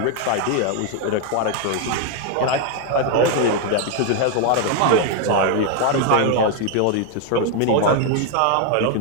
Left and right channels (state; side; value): different; both; correlation 0.01